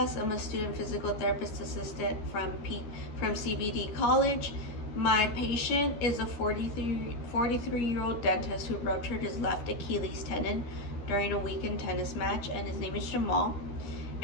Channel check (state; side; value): late; right; 13 ms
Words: I'm a student physical therapist assistant from CBD College. My patient is a 43-year-old dentist who ruptured his left Achilles tendon during a weekend tennis match, and his name is Jamal.